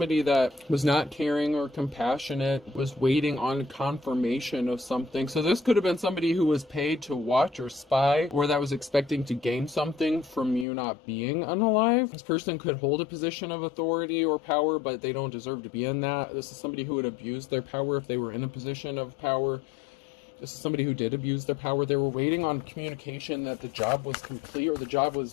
that was not caring or compassionate was waiting on confirmation of something. So this could have been somebody who was paid to watch or spy, or that was expecting to gain something from you not being unalive. This person could hold a position of authority or power, but they don't deserve to be in that. This is somebody who would abuse their power if they were in a position of power. This is somebody who did abuse their power. They were waiting on communication that the job was complete or the job was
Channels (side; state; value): right; drops out; at 10.7 s